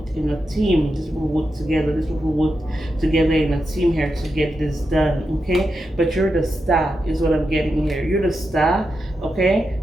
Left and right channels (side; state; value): both; normal; correlation 0.87